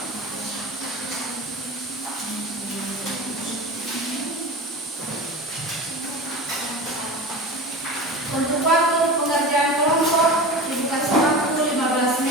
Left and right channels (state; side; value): normal; both; correlation 0.31